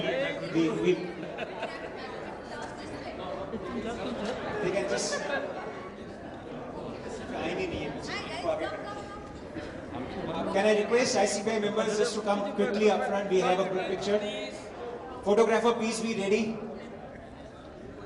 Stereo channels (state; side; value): identical; both; correlation 1.00